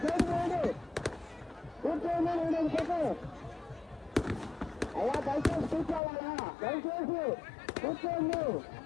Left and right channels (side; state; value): right; drops out; at 6.0 s